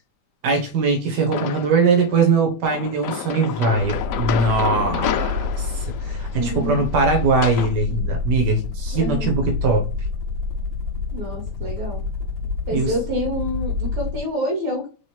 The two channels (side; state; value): left; late; 5.1 ms